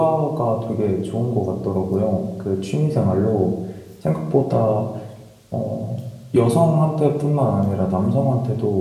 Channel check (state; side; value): identical; both; correlation 1.00